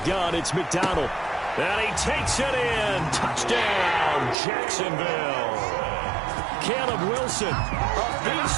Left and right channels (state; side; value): drops out; left; at 4.4 s